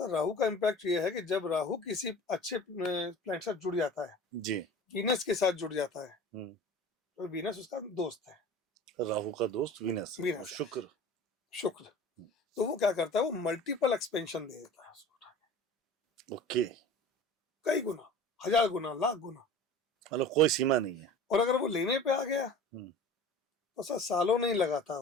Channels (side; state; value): both; normal; correlation 0.40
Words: राहु का इम्पैक्ट ये है कि जब राहु किसी अच्छे प्लैनेट से जुड़ जाता है, जी, वीनस के साथ जुड़ जाता है, हम्म, तो वीनस उसका दोस्त है। राहु का दोस्त वीनस है, वीनस है, शुक्र। शुक्र। तो वो क्या करता है, वो मल्टीपल एक्सपेंशन दे देता है उसको उठा के। ओके, कई गुना, 1000 गुना, लाख गुना। मतलब कोई सीमा नहीं है। और अगर वो लेने पे आ गया हम्म, तो सर सालों नहीं लगाता